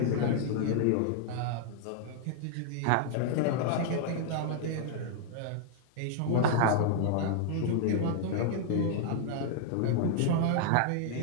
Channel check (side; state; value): both; different; correlation -0.01